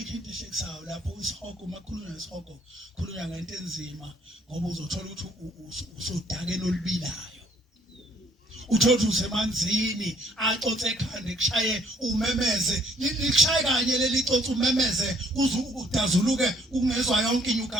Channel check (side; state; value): both; normal; correlation 0.63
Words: into ehlekisayo lapho isihoko makhulunywa nesihoko khulunywa ngento enzima ngoba uzothola ukuthi usudakeni olubilayo uthola ukuthi usemanzini acotse ekhanda kushaye umemeze likushaye kanye leli cotse umemeze uze udazuluke ungezwa yonke